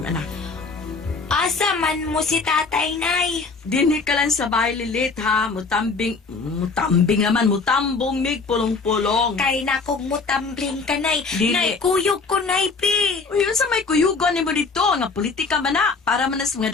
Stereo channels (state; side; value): quieter; right; 4.3 dB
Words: anak. Asa man mo si tatay, nay? Dinhi ka lang sa bahay lilit ha. Mutambing naman. Mutambong mig pulong-pulong. Kay nakog mo tambling ka, nay. Dili. Nay, kuyog ko, nay, pi. Uy, yun sa may kuyugon ni mo dito. Nga politika man na. Para man nas mga